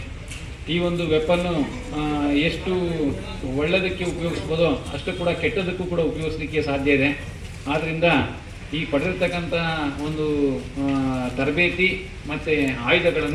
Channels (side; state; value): both; identical; correlation 1.00